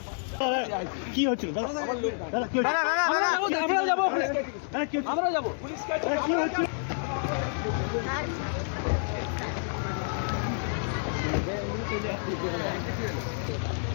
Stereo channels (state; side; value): silent; right; 59 dB below the other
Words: কি হচ্ছিল আমরা যাবো পুলিশকে কি হচ্ছে